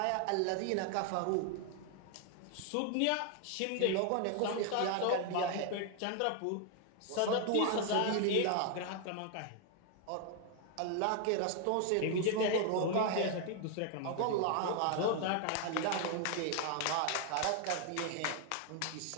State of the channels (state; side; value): different; both; correlation 0.00